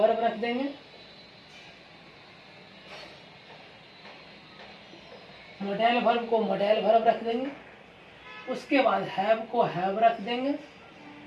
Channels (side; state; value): both; identical; correlation 1.00